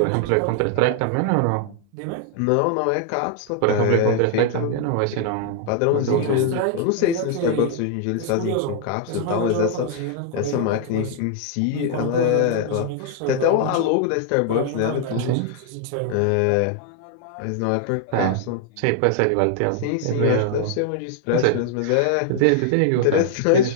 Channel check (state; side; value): different; both; correlation 0.00